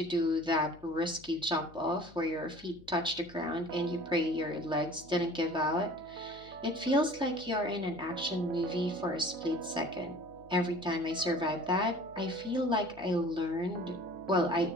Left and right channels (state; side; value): noise; left; hum, 22 dB below the sound